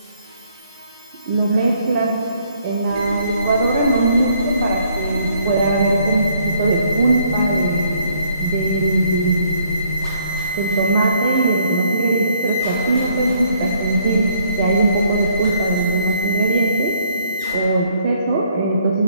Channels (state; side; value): inverted; both; correlation -0.67